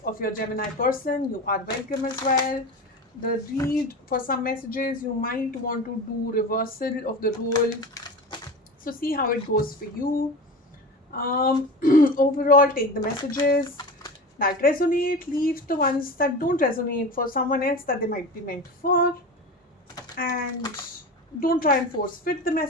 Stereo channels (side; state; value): both; normal; correlation 0.29